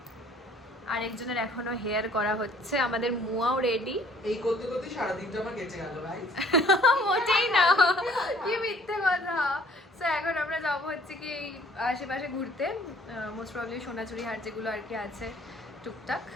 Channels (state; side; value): normal; both; correlation 0.57